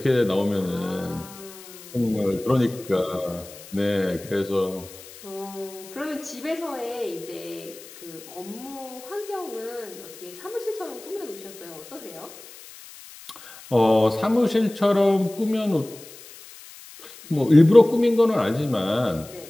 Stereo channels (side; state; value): left; noise; hiss, 18 dB below the sound